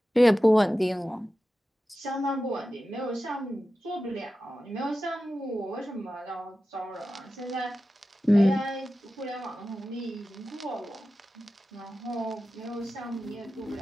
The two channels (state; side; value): normal; both; correlation 0.93